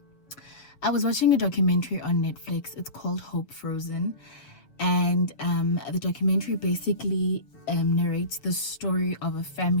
watching a documentary on Netflix. It's called Hope Frozen, and the documentary basically narrates the story of a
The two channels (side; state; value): right; late; 6.9 ms